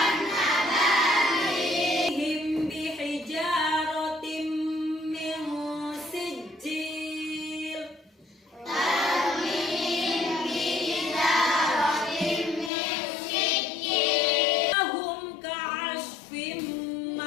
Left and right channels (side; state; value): right; drops out; at 12.7 s